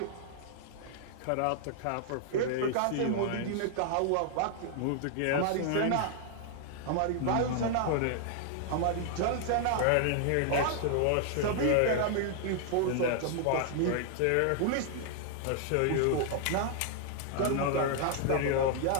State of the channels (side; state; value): both; different; correlation 0.00